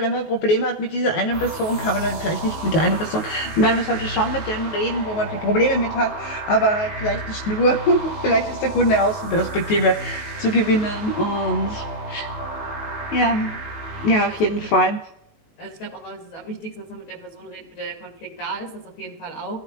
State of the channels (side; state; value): right; late; 19 ms